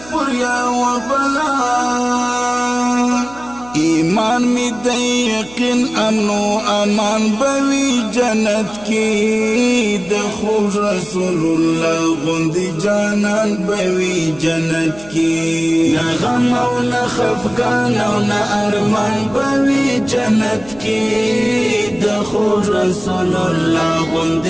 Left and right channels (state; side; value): noise; right; hum, 20 dB below the sound